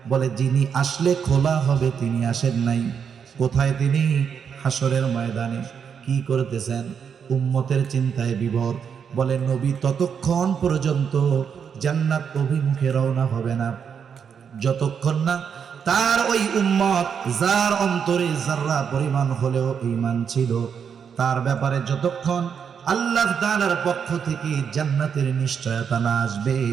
বলে যিনি আসলে খোলা হবে তিনি আসেন নাই। কোথায় তিনি? হাসরের ময়দানে। কি করতেছেন? উম্মতের চিন্তায় বিভোর। বলে নবী ততক্ষণ পর্যন্ত জান্নাত অভিমুখে রওনা হবে না, যতক্ষণ না তার ওই উম্মত, যার অন্তরে যাররা পরিমাণ হলেও ঈমান ছিল, তার ব্যাপারে যতক্ষণ আল্লাহ তাআলার পক্ষ থেকে জান্নাতের নিশ্চয়তা না আসবে,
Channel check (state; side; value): quieter; left; 7.1 dB